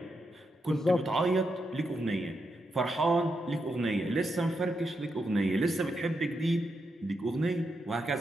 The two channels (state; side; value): normal; both; correlation 0.84